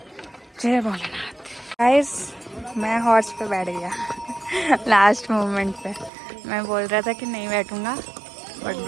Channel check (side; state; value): left; drops out; at 6.1 s